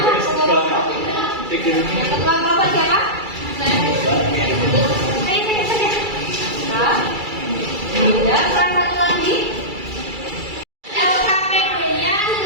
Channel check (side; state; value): left; late; 2.3 ms